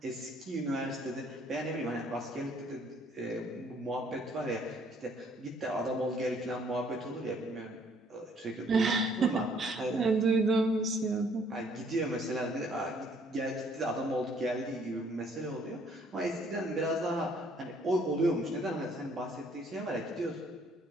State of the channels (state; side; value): normal; both; correlation 0.62